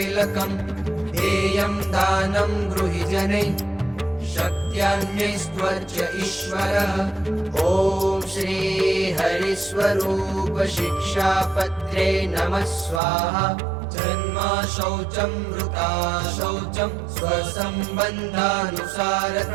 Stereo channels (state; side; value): drops out; left; at 13.0 s